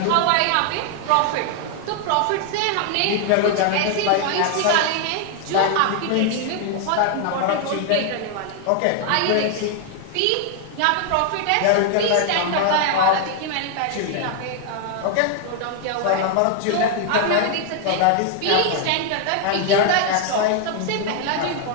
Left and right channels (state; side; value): different; both; correlation 0.00